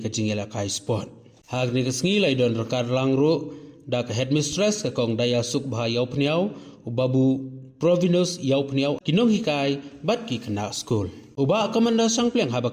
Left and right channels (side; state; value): both; identical; correlation 1.00